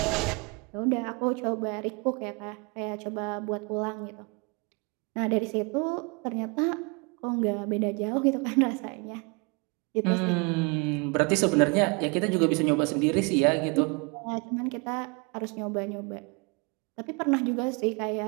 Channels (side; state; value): left; quieter; 31.0 dB